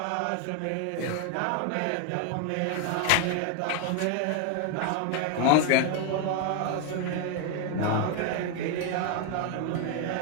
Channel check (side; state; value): both; different; correlation 0.01